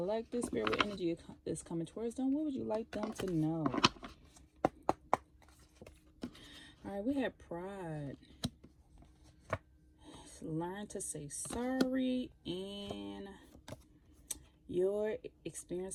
Spirit energy is coming towards them. What would you like them to know? All right, we have pride. Learn to say sorry and your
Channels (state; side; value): identical; both; correlation 1.00